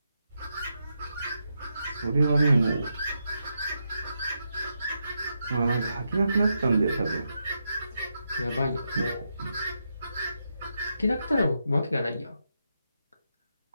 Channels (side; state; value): both; inverted; correlation -0.84